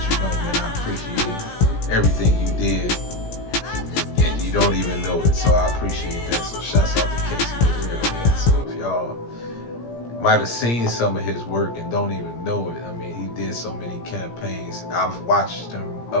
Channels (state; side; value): late; right; 17 ms